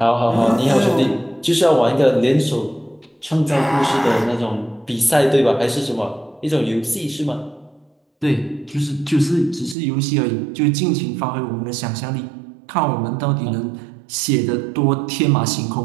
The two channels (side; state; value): left; drops out; at 9.8 s